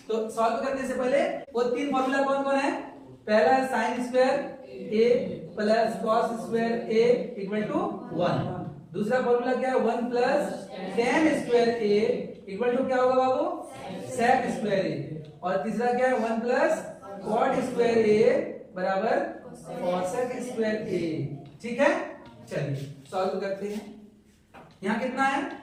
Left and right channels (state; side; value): identical; both; correlation 1.00